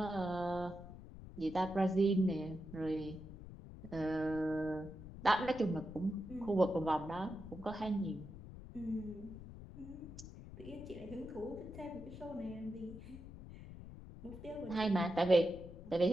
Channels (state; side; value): noise; left; rumble, 13 dB below the sound